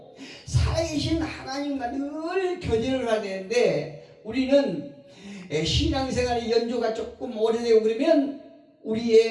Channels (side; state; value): both; identical; correlation 1.00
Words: 살아계신 하나님과 늘 교제를 해야 되는데, 우리는 신앙생활의 연조가 조금 오래되고 그러면